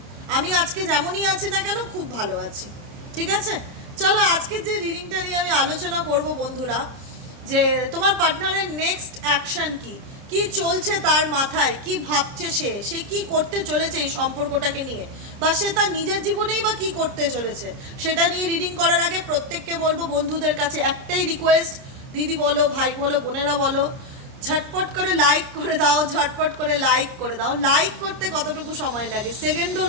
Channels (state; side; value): late; left; 30 ms